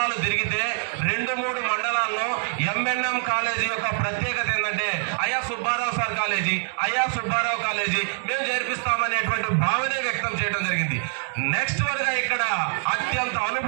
తిరిగితే 2-3 మండలాల్లో ఎంఎన్ఎం కాలేజీ యొక్క ప్రత్యేకత ఏంటంటే అయ్యా సుబ్బారావు సార్ కాలేజీ, అయ్యా సుబ్బారావు కాలేజీ మేము జరిపిస్తామనేటువంటి భావనే వ్యక్తం చేయడం జరిగింది. నెక్స్ట్ వరగా ఇక్కడ అత్యంత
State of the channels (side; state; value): left; silent; digital silence